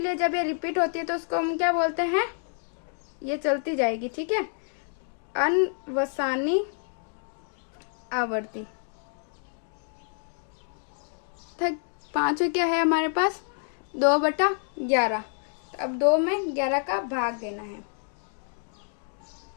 जब ये रिपीट होती है तो उसको हम क्या बोलते हैं, ये चलती जाएगी। ठीक है, अनवसानी आवर्ती। 5 क्या है हमारे पास, 2/11। तो अब 2 में 11 का भाग देना है।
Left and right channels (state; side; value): silent; right; 56 dB below the other